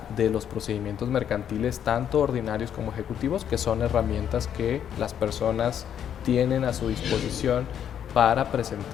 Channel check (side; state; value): right; quieter; 9.2 dB